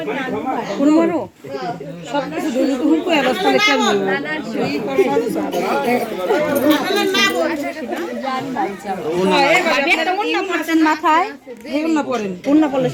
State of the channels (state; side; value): identical; both; correlation 1.00